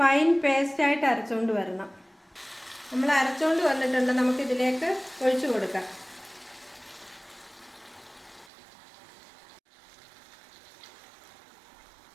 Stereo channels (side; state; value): left; drops out; at 8.5 s